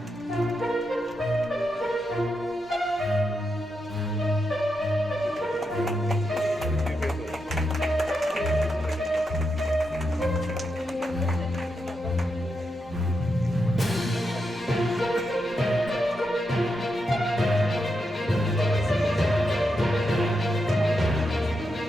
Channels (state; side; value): normal; both; correlation 0.85